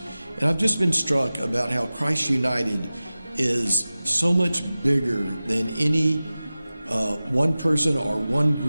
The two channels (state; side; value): inverted; both; correlation -0.96